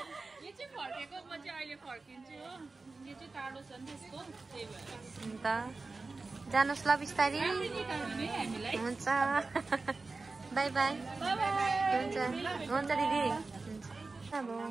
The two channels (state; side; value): quieter; left; 3.7 dB